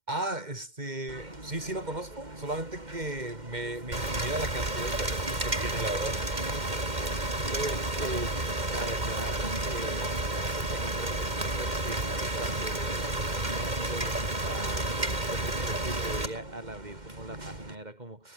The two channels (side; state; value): left; late; 2.1 ms